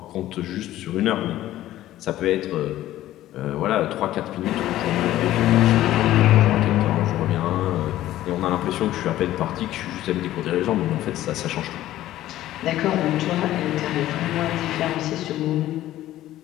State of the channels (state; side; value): quieter; right; 14.2 dB